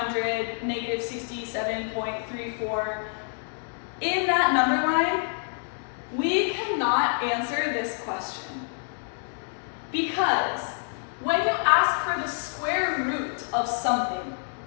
-67.34. In that number line, we cannot answer this question. Because when you ask for the square root of something,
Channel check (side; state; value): right; silent; 60 dB below the other